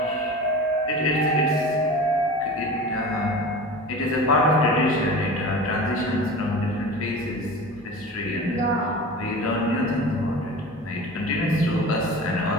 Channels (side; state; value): right; noise; hum, 28 dB below the sound